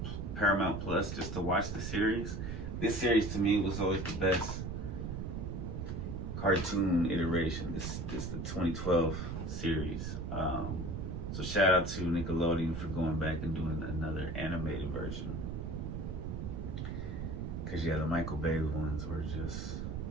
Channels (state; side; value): noise; right; rumble, 4 dB below the sound